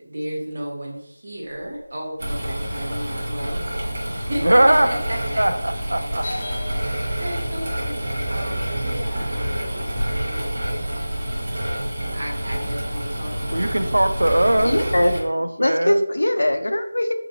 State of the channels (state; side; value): inverted; both; correlation -0.98